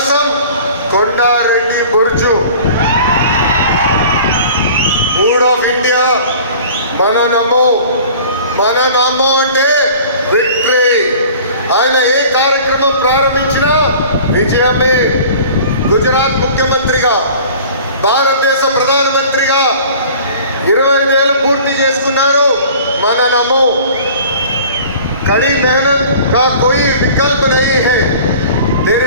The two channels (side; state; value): both; inverted; correlation -0.45